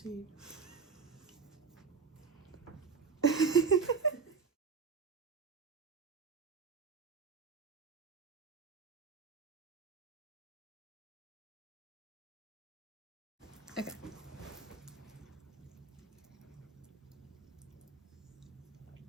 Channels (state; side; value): quieter; left; 5.4 dB